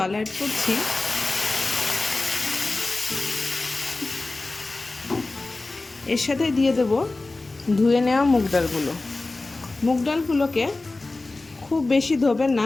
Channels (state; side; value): quieter; right; 3.2 dB